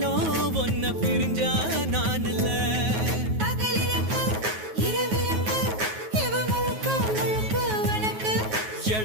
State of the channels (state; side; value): late; left; 9.3 ms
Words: ஒன்ன பிரிஞ்சா நான் இல்ல பகலிரக்கு இரவிரக்கு இவ முழுக்க முழுக்க உனக்கு